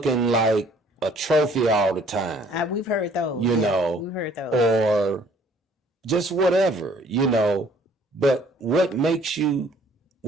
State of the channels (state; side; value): normal; both; correlation 0.58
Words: like a trophy all the time, we've heard those. We've heard those, or just whatever, But what makes